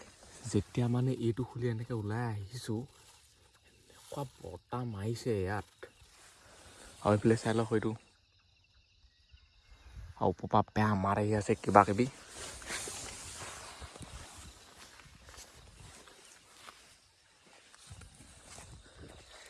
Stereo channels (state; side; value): identical; both; correlation 1.00